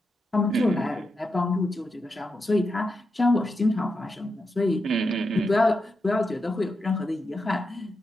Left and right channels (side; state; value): both; normal; correlation 0.87